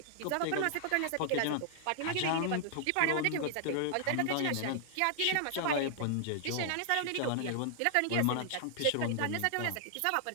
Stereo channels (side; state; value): both; different; correlation -0.01